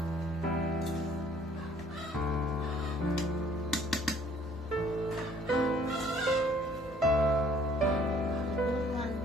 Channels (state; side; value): normal; both; correlation 0.58